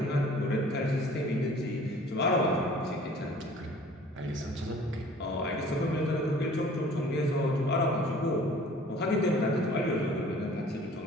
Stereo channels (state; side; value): normal; both; correlation 0.50